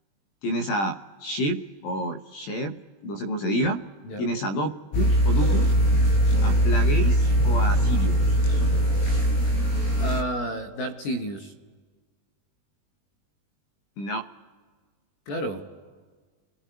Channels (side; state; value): right; late; 20 ms